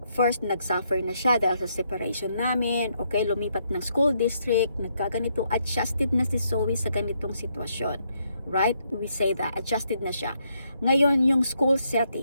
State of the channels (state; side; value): inverted; both; correlation -0.76